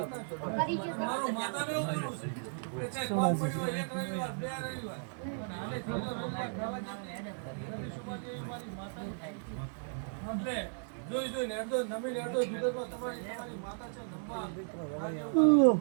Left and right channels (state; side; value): silent; left; digital silence